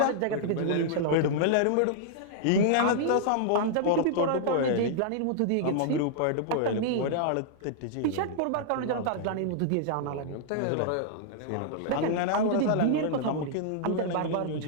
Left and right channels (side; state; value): both; different; correlation -0.01